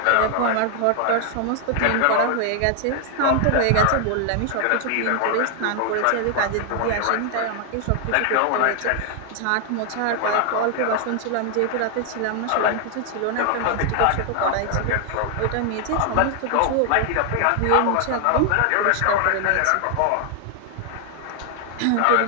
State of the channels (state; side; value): different; both; correlation 0.00